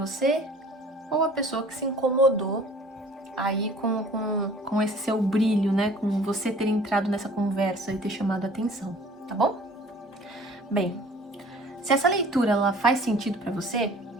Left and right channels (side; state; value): both; normal; correlation 0.50